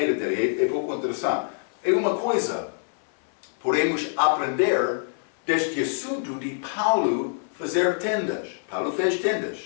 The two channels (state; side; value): silent; right; 62 dB below the other